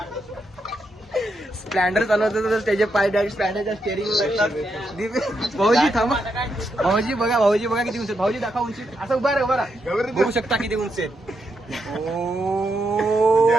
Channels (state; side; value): normal; both; correlation 0.82